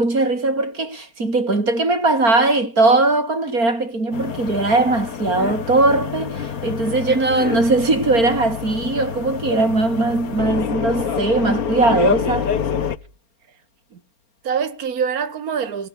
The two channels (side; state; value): left; late; 4.4 ms